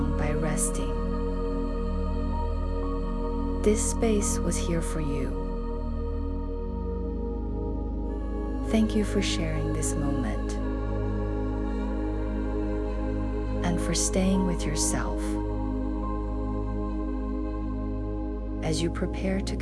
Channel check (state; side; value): identical; both; correlation 1.00